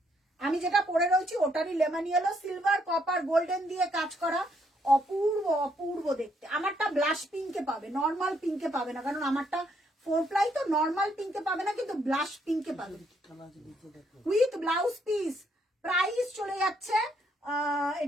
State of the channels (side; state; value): both; normal; correlation 0.72